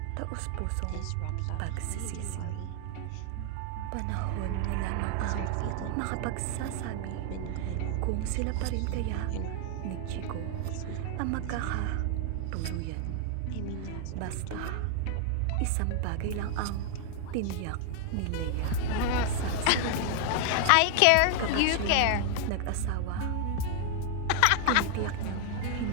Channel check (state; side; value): different; both; correlation 0.00